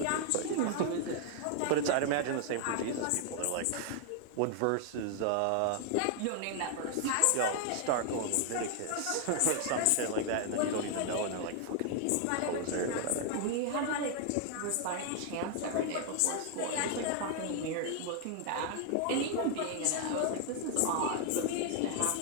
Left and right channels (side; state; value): both; different; correlation 0.00